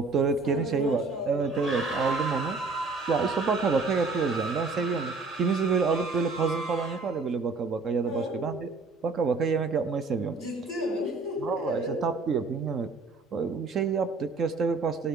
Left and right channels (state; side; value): quieter; left; 3.9 dB